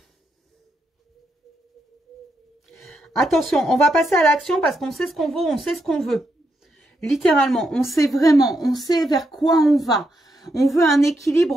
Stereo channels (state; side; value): normal; both; correlation 0.81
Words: Attention, on va passer à l'action parce qu'on sait ce qu'on vaut, on sait ce qu'on veut. Littéralement, on sait vraiment, on sait vers quoi on va. On veut un